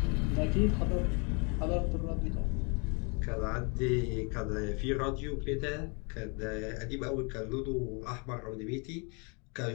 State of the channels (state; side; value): quieter; right; 33.9 dB